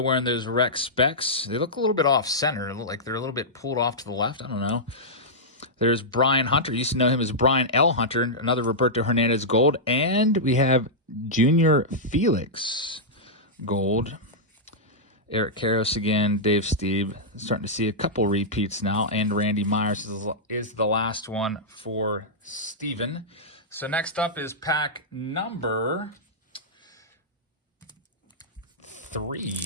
wearing those rec specs. They look a little bit off-center. They look like they're a little bit pulled off to the left. I don't know. There's Brian Hunter. You used to know him as Brian L. Hunter, another Roberto Hernandez gold. And we have Junior Felix gold. Eric Karras again, Dave Stieb. Starting to see a couple repeats now. And Randy Myers is the last one for Steven. So next up is pack number 3. You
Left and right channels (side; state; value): both; normal; correlation -0.10